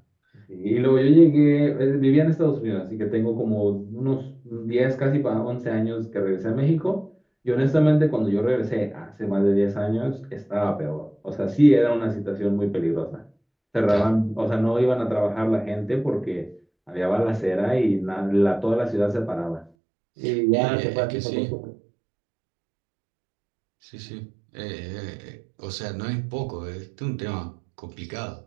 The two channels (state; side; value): drops out; left; at 19.7 s